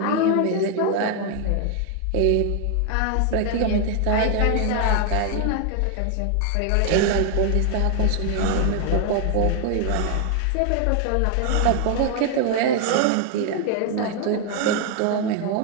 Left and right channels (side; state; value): both; different; correlation 0.00